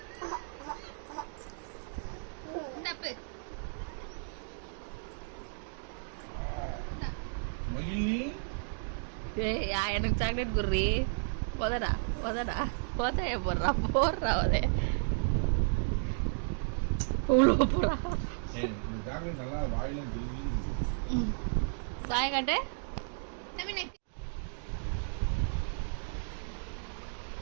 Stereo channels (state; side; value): silent; left; digital silence